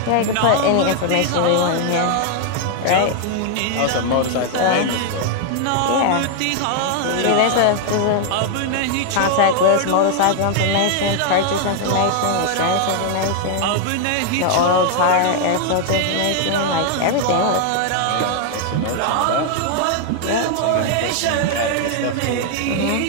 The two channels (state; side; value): different; both; correlation 0.00